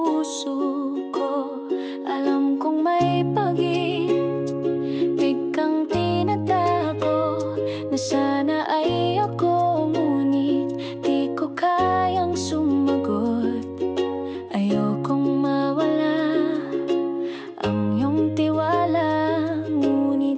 ko. Alam kong may pag-ibig kang tinatago, na sana ay ako, ngunit di ko kayang sumagot. Ayokong mawala ang iyong tiwala,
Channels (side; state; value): both; identical; correlation 1.00